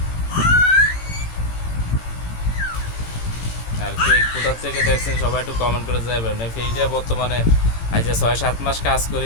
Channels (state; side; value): late; right; 18 ms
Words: আর কে কোথার থেকে দেখছেন সবাই একটু কমেন্ট করে যাবেন। এই পেজটা বর্তমানে আজ 6-7 মাস কাজ